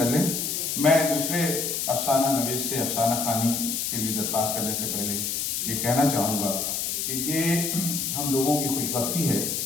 लें। मैं दूसरे अफसाना नवीस से अफसाना खानी के लिए दरख्वास्त करने से पहले ये कहना चाहूँगा कि ये हम लोगों की खुशबख्ती है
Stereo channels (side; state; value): left; noise; hiss, 1 dB below the sound